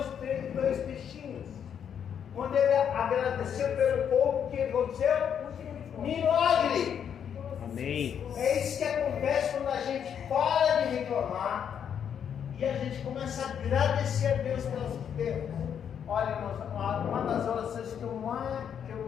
e 2 peixinhos. Quando ele agradeceu pelo pouco, o que aconteceu? Milagre! Amém. É isso que acontece quando a gente para de reclamar e a gente começa a agradecer a Deus pelas coisas. Olha, irmãos, uma das orações que eu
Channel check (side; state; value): right; quieter; 8.3 dB